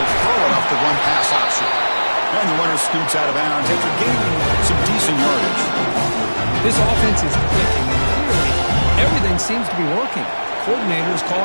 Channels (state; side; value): inverted; both; correlation -1.00